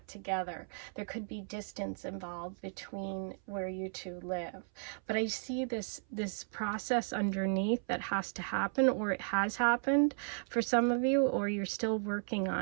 together. There could be distance involved between where you two live, but I see this process underneath that has to happen, or it has happened for some of you, or you're still working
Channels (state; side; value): silent; left; 54 dB below the other